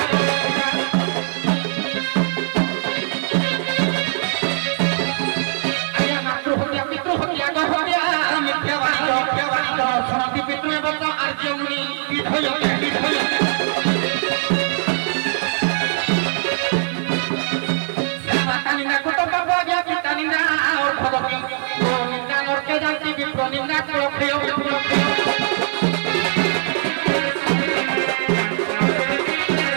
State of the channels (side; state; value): left; silent; digital silence